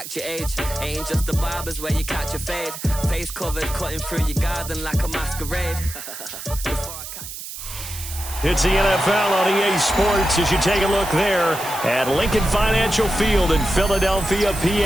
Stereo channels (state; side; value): noise; right; hiss, 10 dB below the sound